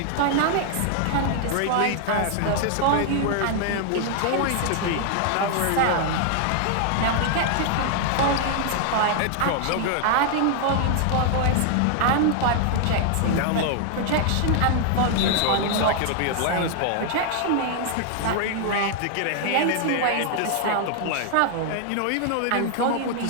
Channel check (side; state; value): both; different; correlation 0.00